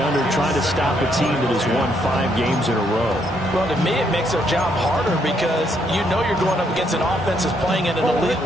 under trying to stop a team that has won 5 games in a row? Well, to me, it makes their job harder because you know you're going up against an offense that's playing at an elite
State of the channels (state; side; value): normal; both; correlation 0.73